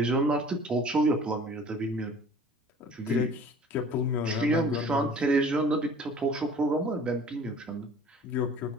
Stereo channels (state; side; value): normal; both; correlation 0.48